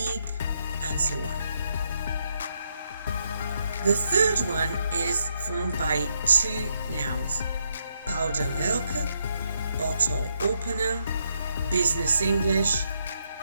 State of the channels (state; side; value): inverted; both; correlation -0.77